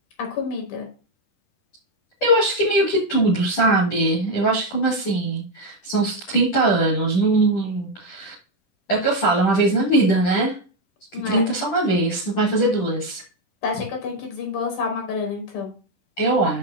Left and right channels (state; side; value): late; right; 10 ms